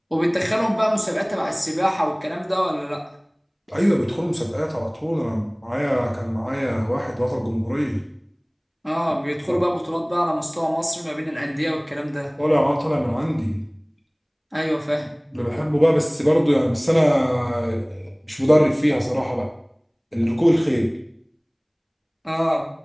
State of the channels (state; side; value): identical; both; correlation 1.00